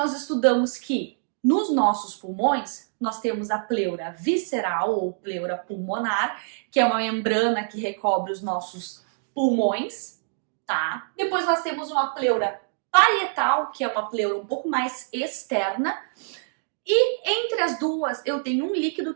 estudamos que nos nossos pulmões nós temos a pleura visceral ou pleura pulmonar, que é uma membrana que recobre os nossos pulmões, tá? Depois nós temos uma pleura parietal, que é uma pleura um pouco mais externa, e entre as duas eu tenho um líquido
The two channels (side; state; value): left; silent; digital silence